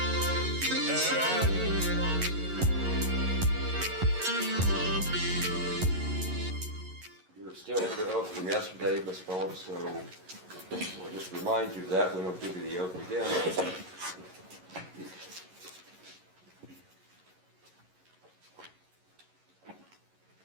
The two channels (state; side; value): late; left; 11 ms